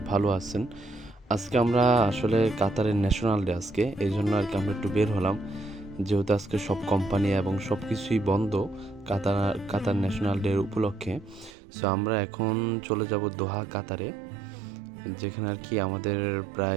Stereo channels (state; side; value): drops out; left; at 11.5 s